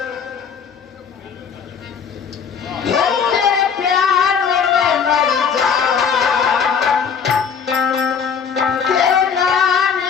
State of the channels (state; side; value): quieter; right; 6.7 dB